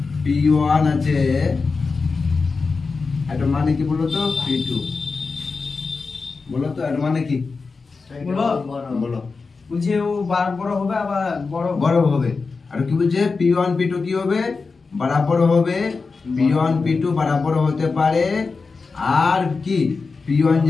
p1 আছে, এটা মানে কি বলো তো p2, বলো তো এটা মানে কি বলো। বুঝে ও বড় হবে আবার বড় হবে। আর কি বলছে p1 p2 কি হবে, বরাবর হবে। p1 p2 বরাবর হতে পারে, আর কি p1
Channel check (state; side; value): quieter; right; 4.4 dB